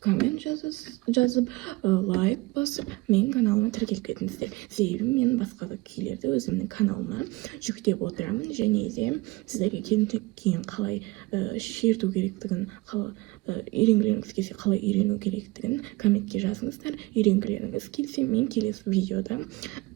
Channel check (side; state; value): left; quieter; 22.0 dB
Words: коммент жазып, лайк басып, менің каналыма тіркеліп кетіңіздер. Себебі мен басқа да күйлерді өзімнің каналыма жүктеп отырамын, және де сіздерге келіншек күйін қалай шерту керектігін, үйренгілеріңіз келсе қалай үйрену керектігін комментке жазыңыздар. Үйренгілеріңіз келсе, мен келесі видеода